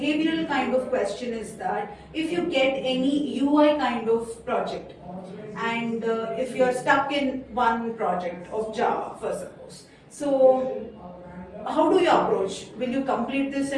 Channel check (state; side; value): identical; both; correlation 1.00